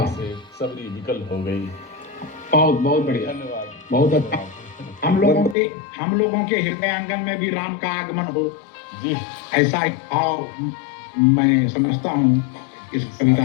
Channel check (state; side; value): drops out; right; at 5.6 s